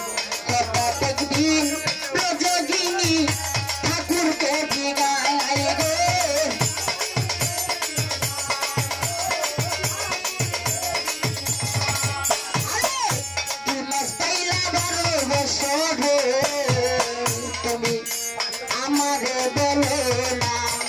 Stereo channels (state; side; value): identical; both; correlation 1.00